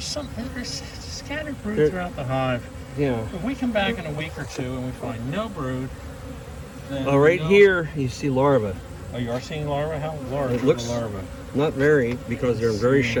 scattered brood throughout the hive. Yeah. If we come back in a week or two and we find no brood, then Oh, right here you see larvae. Oh, you are seeing larvae? How large It are looks the larvae? not very, because they're very see.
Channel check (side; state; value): both; identical; correlation 1.00